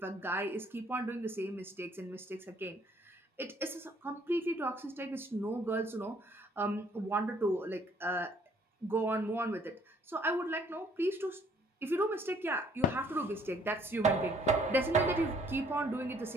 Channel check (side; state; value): both; normal; correlation 0.62